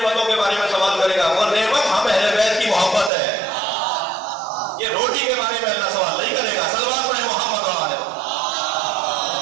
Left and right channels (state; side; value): drops out; left; at 3.1 s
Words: کے بارے میں سوال کرے گا، وہ نعمت ہم اہل بیت کی محبت ہے. یہ روٹی کے بارے میں اللہ سوال نہیں کرے گا. سلمان پڑھے محمد والے